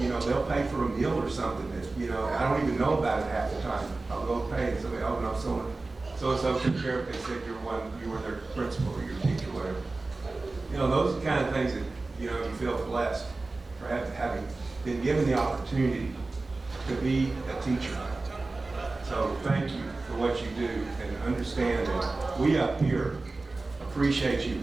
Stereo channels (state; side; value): quieter; left; 3.4 dB